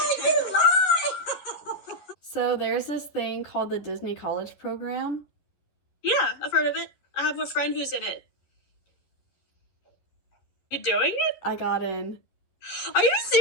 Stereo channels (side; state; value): right; late; 11 ms